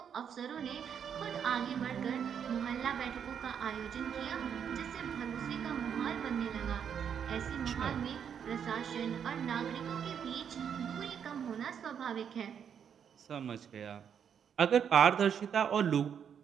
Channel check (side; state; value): left; quieter; 7.9 dB